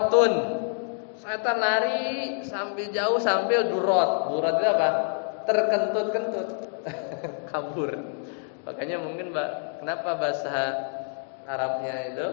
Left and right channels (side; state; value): right; silent; 60 dB below the other